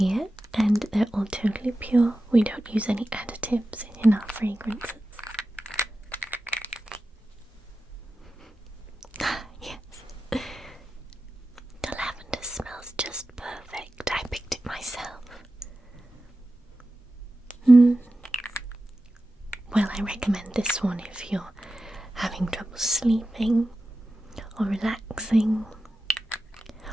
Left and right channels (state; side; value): normal; both; correlation 0.93